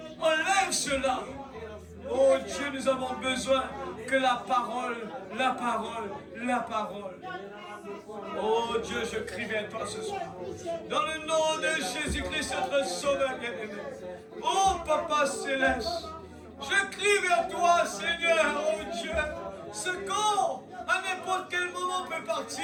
enlève cela. Oh Dieu, nous avons besoin que la parole. Oh Dieu, je crie vers toi ce soir. Dans le nom de Jésus-Christ, notre Sauveur bien-aimé. Oh Papa Céleste, je crie vers toi, Seigneur, oh Dieu. Ce corps, à n'importe quel moment, peut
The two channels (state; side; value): identical; both; correlation 1.00